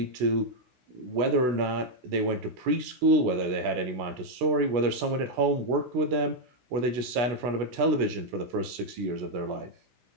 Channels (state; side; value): late; left; 16 ms